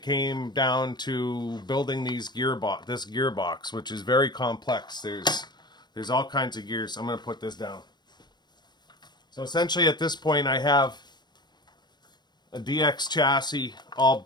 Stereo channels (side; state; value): right; late; 0.21 ms